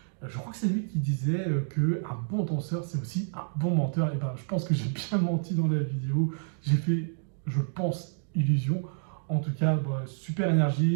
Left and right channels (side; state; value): left; silent; digital silence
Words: Je crois que c'est lui qui disait qu'un bon danseur, c'est aussi un bon menteur. Et je pense que j'ai bien menti dans la vidéo. J'ai fait, je pense, illusion. En tout cas, super